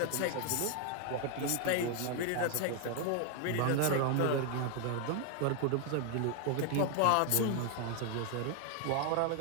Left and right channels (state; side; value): different; both; correlation 0.00